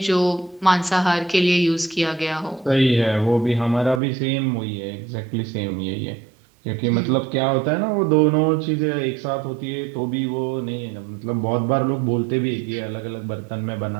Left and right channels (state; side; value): drops out; left; at 4.0 s